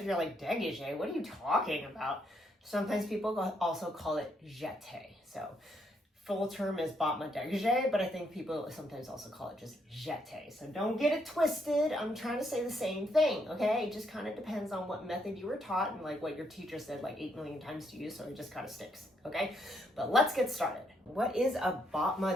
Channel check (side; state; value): both; normal; correlation 0.75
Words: you're like, dégagé, what are you talking about? Sometimes people also call it Jete. So full term is battement dégagé, but I think people sometimes also call it just Jete. So don't get it twisted. I'm trying to say the same thing, okay? It just kind of depends on what method you were taught and like what your teacher said like 8 million times to you, so it just kind of sticks, okay? But let's get started. What is a